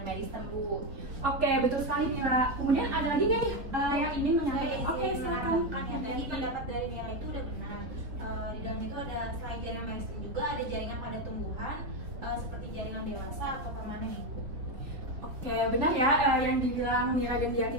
meristem Bu. Oke, betul sekali Mira. Kemudian ada lagi nggak nih yang ingin menyampaikan? Oke, silakan. Kan ya, tadi pendapat dari Mira itu udah benar. Di dalam itu ada selain jaringan meristem juga ada jaringan pada tumbuhan seperti jaringan dewasa atau permanen Ibu. Oke, benar ya yang dibilang Mira dan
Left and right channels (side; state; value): left; late; 3.5 ms